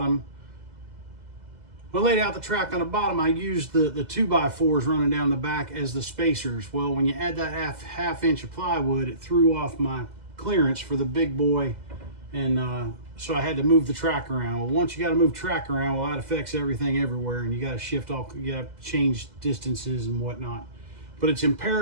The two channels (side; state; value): left; late; 2.0 ms